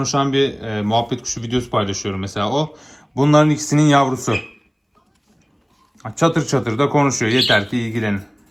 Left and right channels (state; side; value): identical; both; correlation 1.00